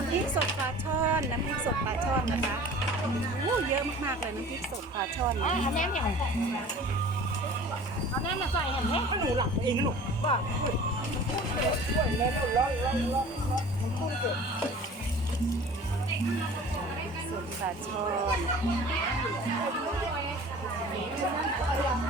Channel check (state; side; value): normal; both; correlation 0.43